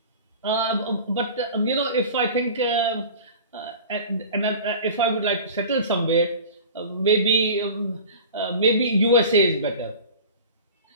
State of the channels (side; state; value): both; inverted; correlation -0.38